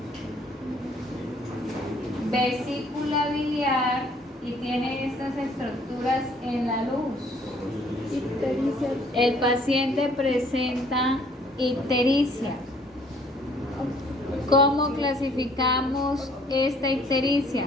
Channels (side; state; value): both; normal; correlation 0.60